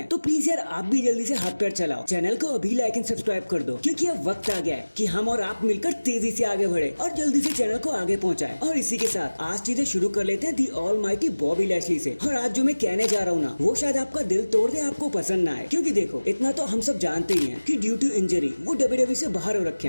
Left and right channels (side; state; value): both; inverted; correlation -1.00